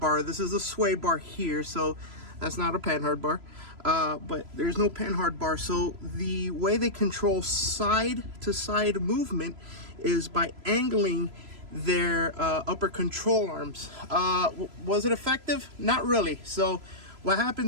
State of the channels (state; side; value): late; left; 3.0 ms